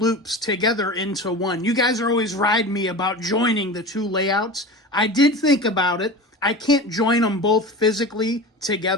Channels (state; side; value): normal; both; correlation 0.31